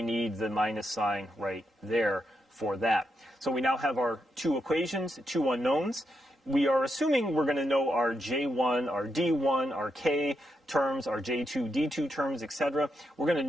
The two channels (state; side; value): normal; both; correlation 0.82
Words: need the minus sign right there for that. So we now have our two equations, two unknowns. We are assuming we're going to know our J1, our D1, our K terms, our J2, D2 terms, etc. We're going